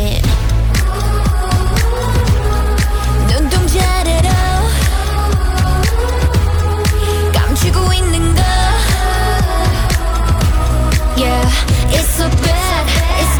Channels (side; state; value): both; identical; correlation 1.00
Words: 눈동자래로 감추고 있는 거 Yeah, it's so bad, it's